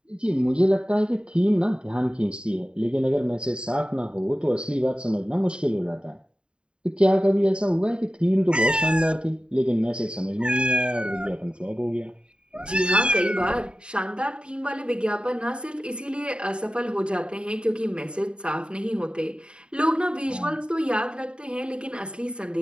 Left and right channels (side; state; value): left; late; 0.052 ms